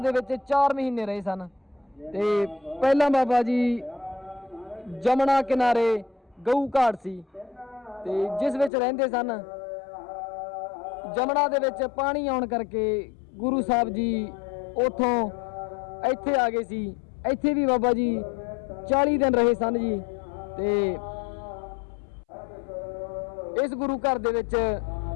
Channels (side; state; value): right; drops out; at 8.7 s